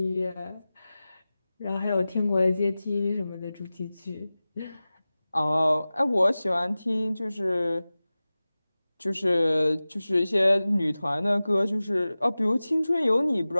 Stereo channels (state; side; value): inverted; both; correlation -0.97